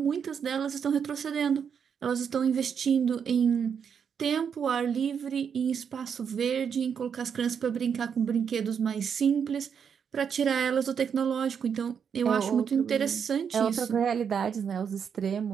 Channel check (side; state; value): left; quieter; 7.2 dB